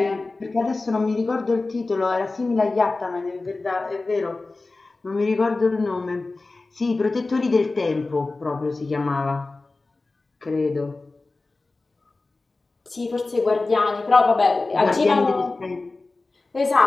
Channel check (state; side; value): quieter; right; 3.4 dB